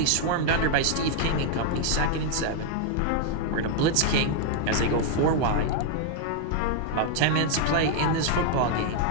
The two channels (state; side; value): different; both; correlation 0.00